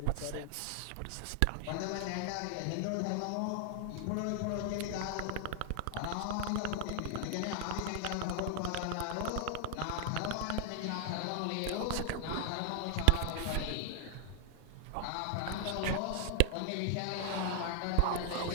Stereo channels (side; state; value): both; different; correlation 0.00